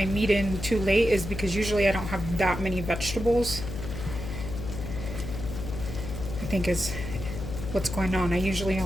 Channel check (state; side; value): noise; left; hum, 7 dB below the sound